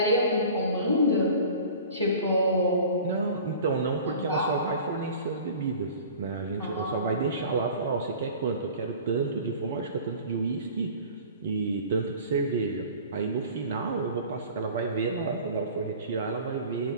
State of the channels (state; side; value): inverted; both; correlation -0.42